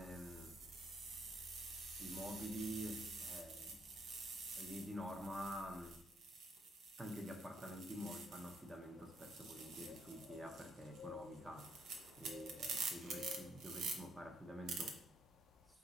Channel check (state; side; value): normal; both; correlation 0.71